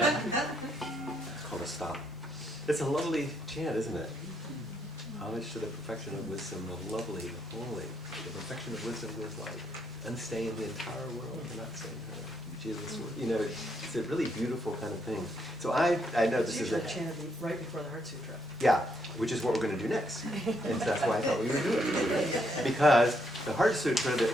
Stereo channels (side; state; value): both; normal; correlation 0.75